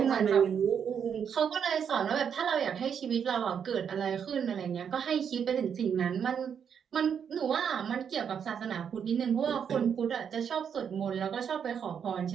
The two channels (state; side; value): quieter; left; 7.6 dB